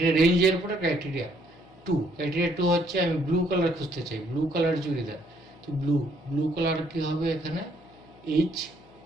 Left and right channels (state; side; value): noise; left; hum, 27 dB below the sound